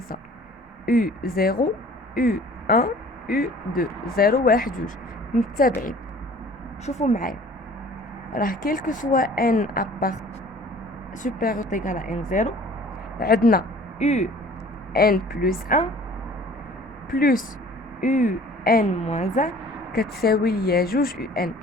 يو 0 يو 1 يو 2 0 1 2 متتابعين. شوفوا معايا، راه كيلكو سوا ان ابارت سوبيريور ايغال ان 0 عندنا يو ان بلس 1 بلس يو ان موان 1 كتساوي ليا جوج يو ان.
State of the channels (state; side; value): normal; both; correlation 0.49